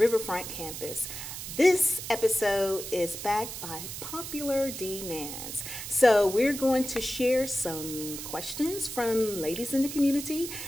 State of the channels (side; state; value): right; noise; hiss, 8 dB below the sound